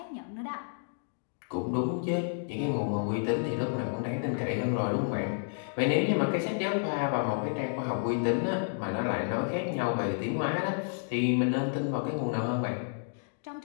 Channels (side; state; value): right; silent; digital silence